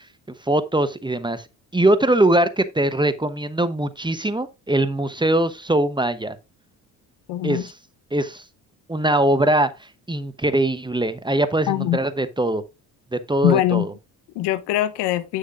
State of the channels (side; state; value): both; normal; correlation 0.56